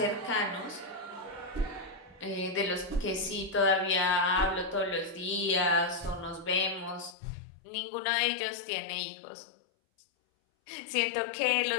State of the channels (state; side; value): drops out; right; at 7.2 s